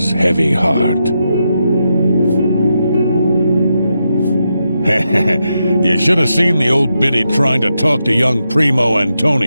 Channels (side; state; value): both; inverted; correlation -0.85